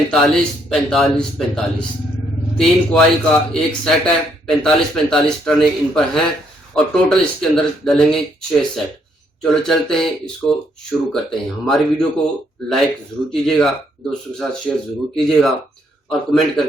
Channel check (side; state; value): both; normal; correlation 0.72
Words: 45, 45। 3 कॉइल का एक सेट है, 45, 45 टर्नें इन पर हैं और टोटल इसके अंदर डलेंगे 6 सेट। चलो चलते हैं, इसको शुरू करते हैं। हमारी वीडियो को लाइक जरूर कीजिएगा, दोस्तों के साथ शेयर जरूर कीजिएगा और कमेंट